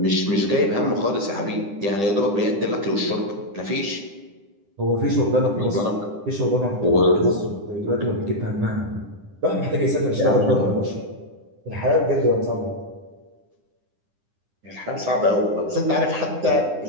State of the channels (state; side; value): late; left; 9.9 ms